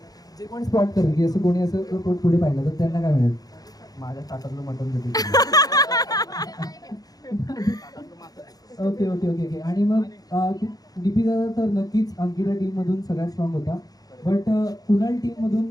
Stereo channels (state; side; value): late; right; 0.18 ms